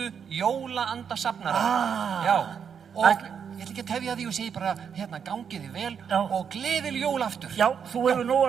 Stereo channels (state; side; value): quieter; left; 7.2 dB